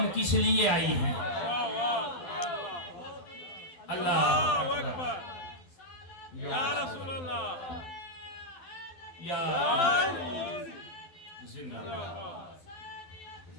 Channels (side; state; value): right; late; 12 ms